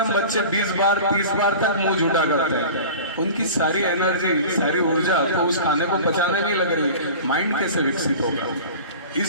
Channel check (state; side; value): inverted; both; correlation -0.37